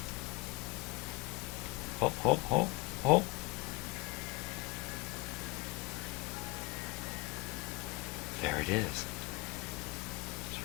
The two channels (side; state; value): right; quieter; 21.5 dB